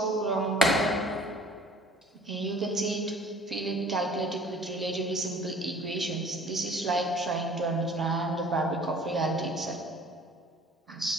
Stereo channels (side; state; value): both; normal; correlation 0.50